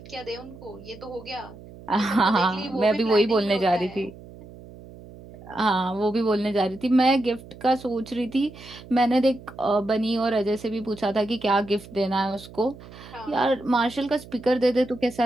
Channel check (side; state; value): right; noise; hum, 18 dB below the sound